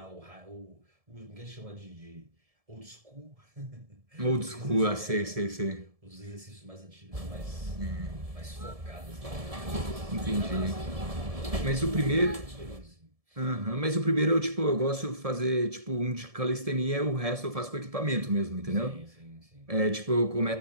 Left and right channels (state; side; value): late; left; 1.7 ms